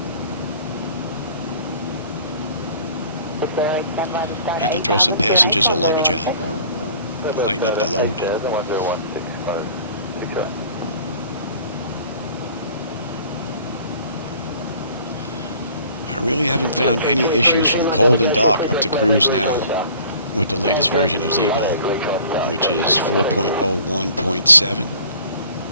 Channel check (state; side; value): inverted; both; correlation -0.51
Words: Have to throw some passengers or luggage out. Lighten up the load. I really haven't found any issues from cold and dark up to cruise now with the latest version of Zibo, which is 4.01.7.